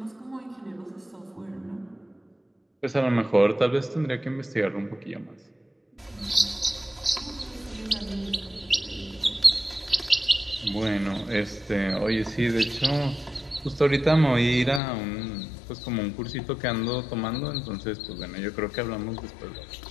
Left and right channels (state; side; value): drops out; right; at 14.8 s